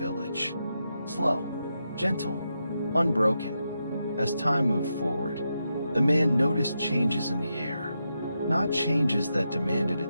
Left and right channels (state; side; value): inverted; both; correlation -0.86